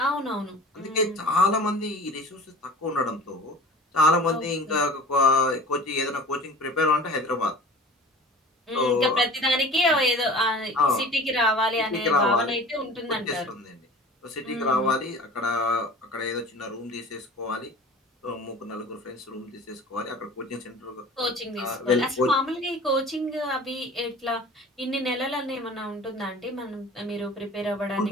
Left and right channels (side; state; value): both; normal; correlation 0.41